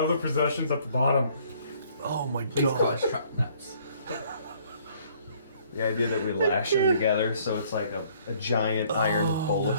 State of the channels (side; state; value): both; inverted; correlation -0.61